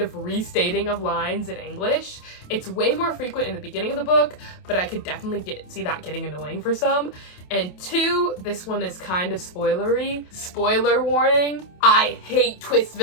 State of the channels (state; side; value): late; right; 27 ms